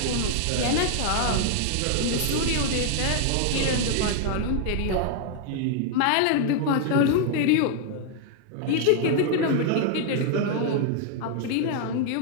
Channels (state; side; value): different; both; correlation 0.00